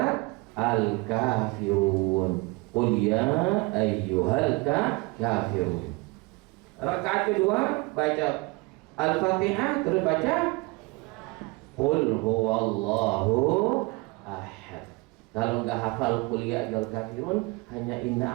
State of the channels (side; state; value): left; quieter; 25.7 dB